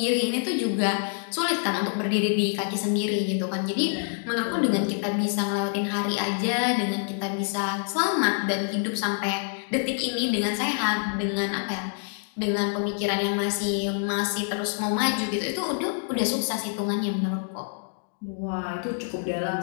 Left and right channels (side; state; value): right; silent; 61 dB below the other